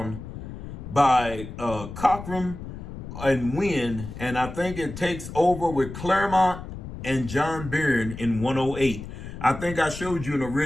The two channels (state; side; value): noise; left; rumble, 10 dB below the sound